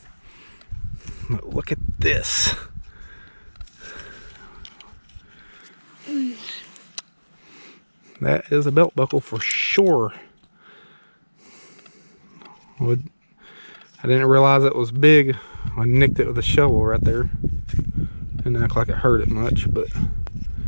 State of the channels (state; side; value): inverted; both; correlation -1.00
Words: But look at this. That is a belt buckle for sure. I didn't realize it was big. I nicked it with a shovel right there. Didn't act like it hurt it much, but